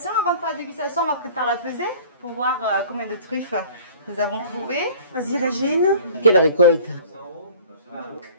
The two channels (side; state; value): both; inverted; correlation -0.47